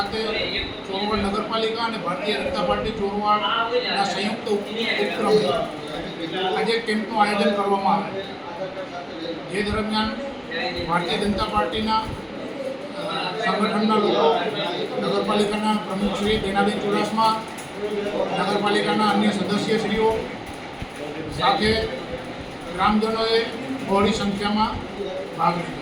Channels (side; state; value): both; identical; correlation 1.00